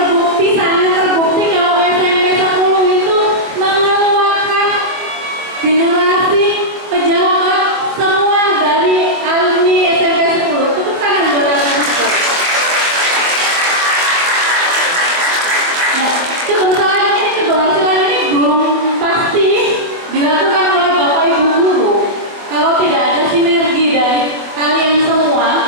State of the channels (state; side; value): late; left; 24 ms